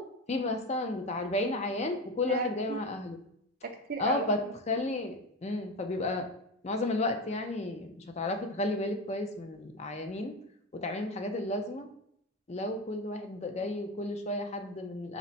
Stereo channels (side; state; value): both; normal; correlation 0.21